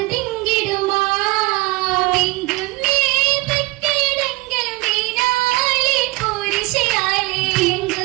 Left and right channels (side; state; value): left; quieter; 22.5 dB